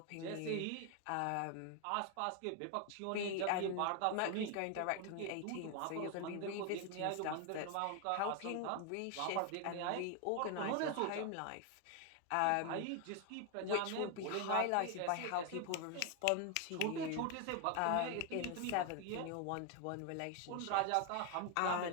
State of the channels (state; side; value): different; both; correlation 0.01